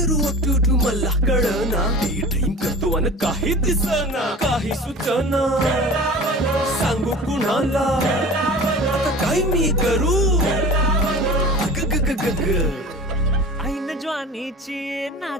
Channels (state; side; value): normal; both; correlation 0.38